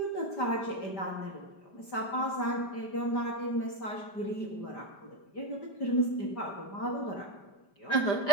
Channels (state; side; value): late; right; 5.1 ms